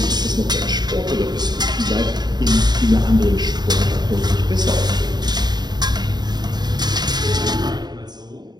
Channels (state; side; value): late; left; 0.20 ms